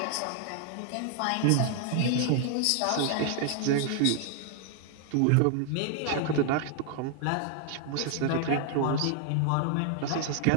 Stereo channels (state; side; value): different; both; correlation 0.00